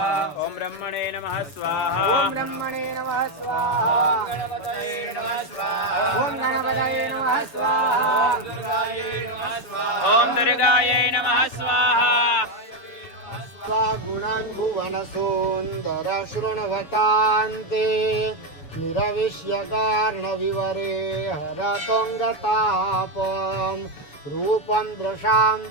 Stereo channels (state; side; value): late; right; 7.0 ms